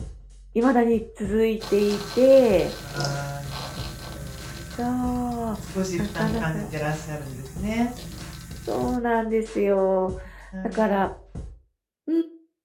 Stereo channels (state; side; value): identical; both; correlation 1.00